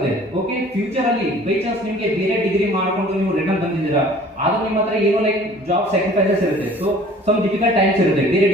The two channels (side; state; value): both; normal; correlation 0.50